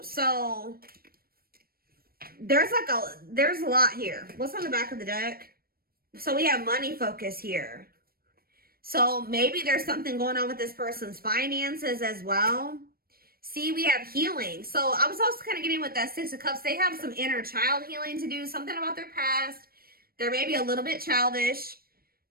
So there's a lot here. What's on the back of the deck? So we have money focus here. So maybe there's something going on with this person's finances as well. See, we have healing. So I was also kind of getting with that Six of Cups. They have some inner child healing to do, something about their past. They're maybe a little bit childish.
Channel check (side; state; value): left; late; 0.44 ms